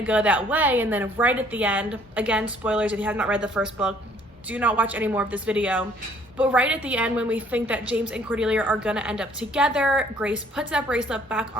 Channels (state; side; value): normal; both; correlation 0.60